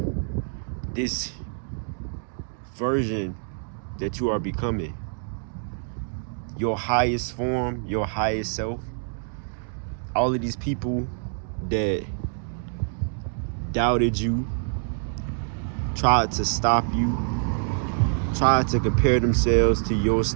this version that you are becoming. Your highest form, your highest self. All of these people that doubted you, tried to stop you, tried to compare themselves to your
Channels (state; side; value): silent; left; 61 dB below the other